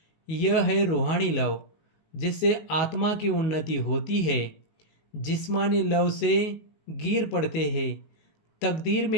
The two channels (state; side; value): late; right; 19 ms